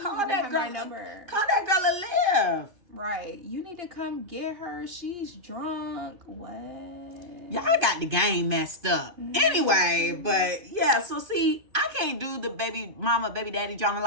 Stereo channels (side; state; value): left; late; 2.5 ms